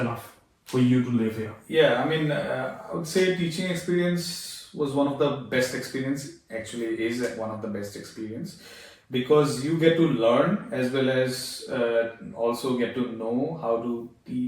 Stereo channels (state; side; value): identical; both; correlation 1.00